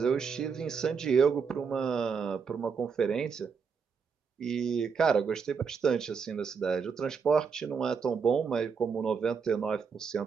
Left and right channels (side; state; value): left; quieter; 5.9 dB